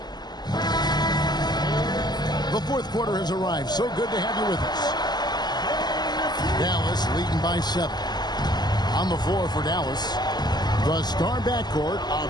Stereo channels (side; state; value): right; late; 0.20 ms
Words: The fourth quarter has arrived. So good to have you with us. Dallas leading by 7. On the floor for Dallas, the star backcourt of